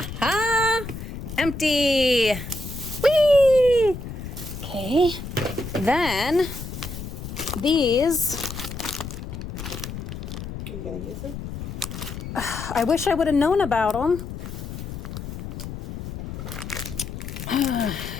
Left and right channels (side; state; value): left; noise; rumble, 8 dB below the sound